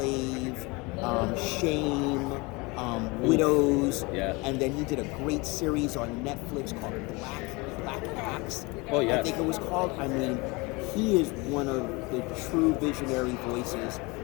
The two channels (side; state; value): right; quieter; 25.9 dB